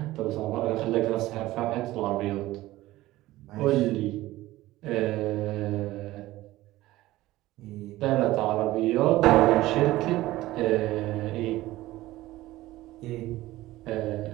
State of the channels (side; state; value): left; quieter; 17.0 dB